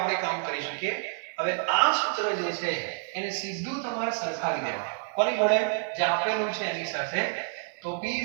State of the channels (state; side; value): silent; left; 59 dB below the other